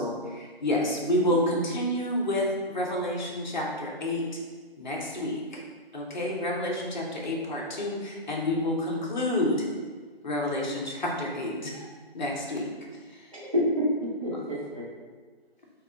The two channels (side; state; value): both; normal; correlation -0.07